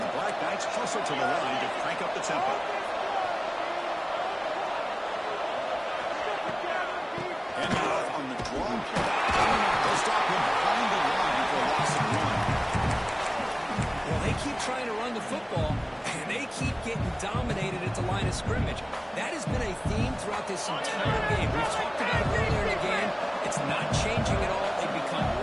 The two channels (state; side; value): identical; both; correlation 1.00